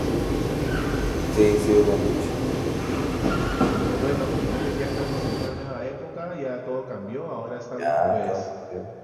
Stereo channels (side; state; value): both; identical; correlation 1.00